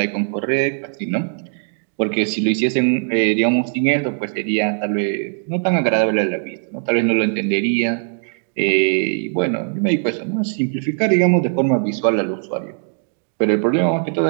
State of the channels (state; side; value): silent; left; digital silence